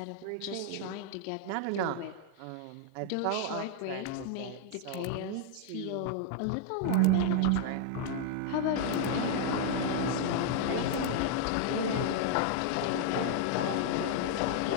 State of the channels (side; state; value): both; different; correlation 0.00